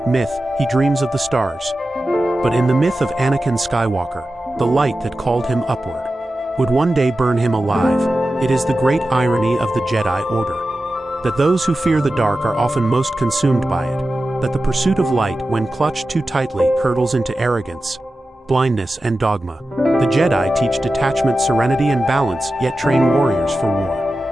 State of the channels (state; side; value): normal; both; correlation 0.93